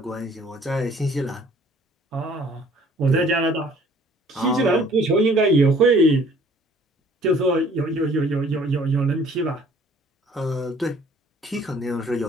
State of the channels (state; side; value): normal; both; correlation 0.56